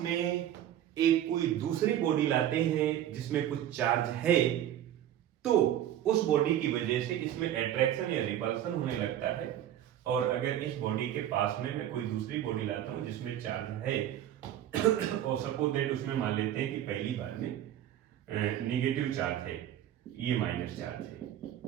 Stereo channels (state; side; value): quieter; left; 11.5 dB